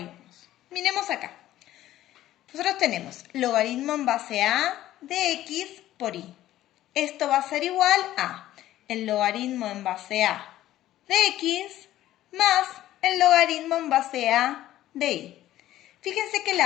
Miremos acá. Nosotros tenemos logaritmo en base a de x por y. Esto va a ser igual a el logaritmo en base a de x más el logaritmo en base a de y. Fíjense que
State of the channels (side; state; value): right; quieter; 13.9 dB